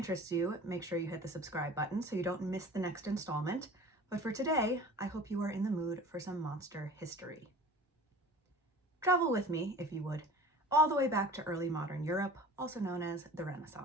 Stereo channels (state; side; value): normal; both; correlation 0.42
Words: you, make sure you hit the subscribe button so you don't miss the next installment. But for today, I hope you are in the mood for some monster history. Travel with me, if you would, all the way back to early modern Europe, also known as the